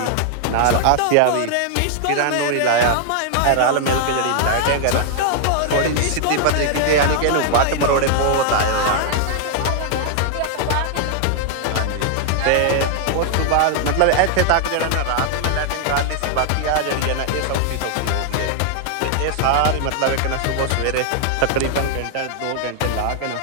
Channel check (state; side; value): different; both; correlation 0.00